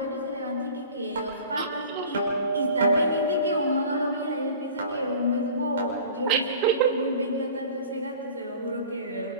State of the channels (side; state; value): both; inverted; correlation -0.43